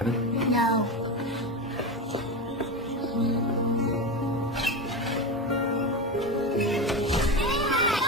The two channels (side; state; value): both; normal; correlation 0.20